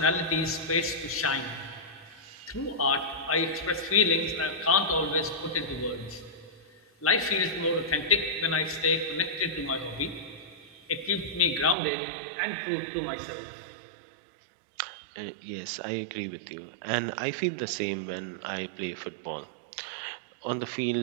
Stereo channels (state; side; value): drops out; left; at 11.8 s